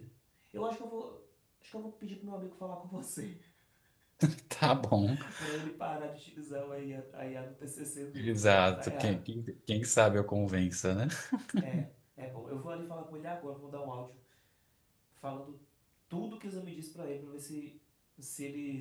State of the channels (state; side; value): identical; both; correlation 1.00